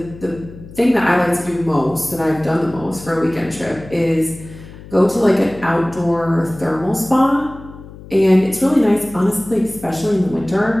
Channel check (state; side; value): noise; left; hum, 17 dB below the sound